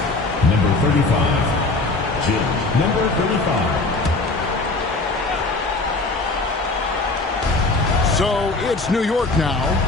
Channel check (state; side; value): quieter; right; 3.3 dB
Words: Number 35. Jim. Number 35. So it's New York now.